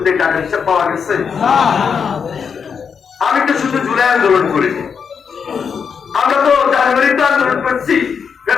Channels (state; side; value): quieter; right; 6.5 dB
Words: টাকা হিসাব পাওয়া গেছে? আমি তো শুধু জুলাই আন্দোলন করিনি, আমরা তো জানুয়ারিতে আন্দোলন করছি,